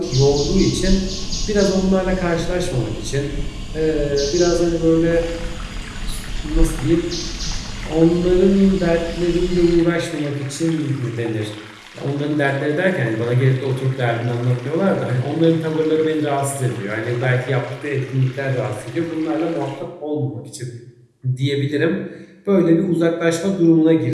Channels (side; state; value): both; identical; correlation 1.00